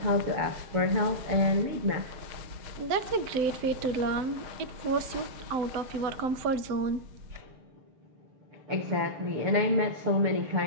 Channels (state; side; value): late; left; 7.9 ms